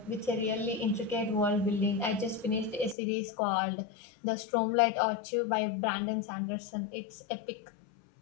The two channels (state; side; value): drops out; right; at 3.0 s